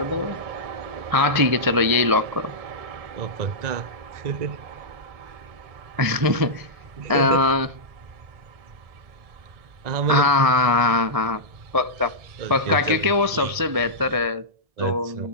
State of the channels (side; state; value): left; late; 1.7 ms